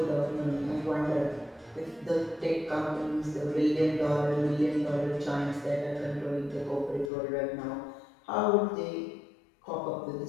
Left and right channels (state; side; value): drops out; right; at 7.1 s